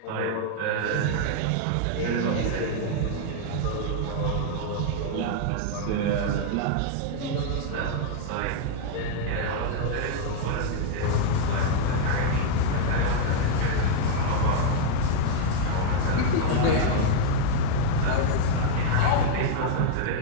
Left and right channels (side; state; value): both; different; correlation 0.00